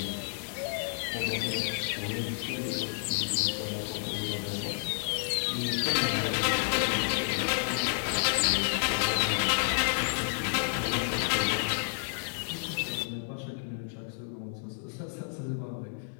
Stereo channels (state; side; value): silent; right; digital silence